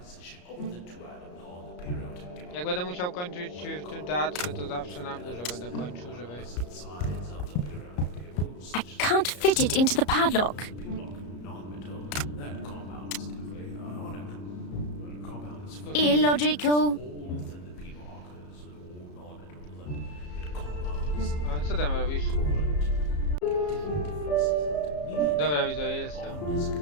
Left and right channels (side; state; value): right; late; 34 ms